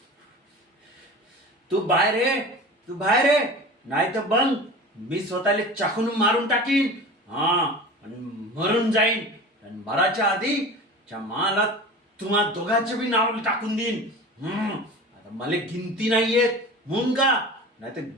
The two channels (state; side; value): normal; both; correlation 0.35